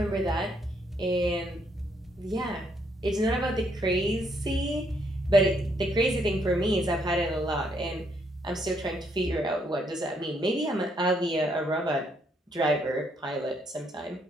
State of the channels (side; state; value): both; normal; correlation 0.72